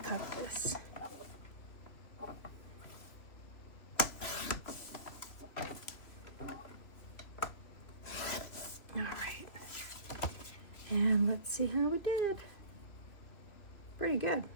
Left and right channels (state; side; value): late; right; 2.9 ms